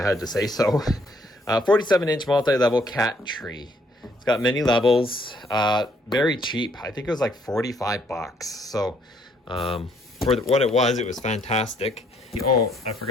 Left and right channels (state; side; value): normal; both; correlation 0.67